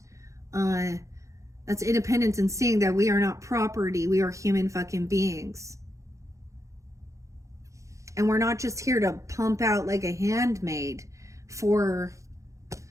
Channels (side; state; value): left; late; 0.15 ms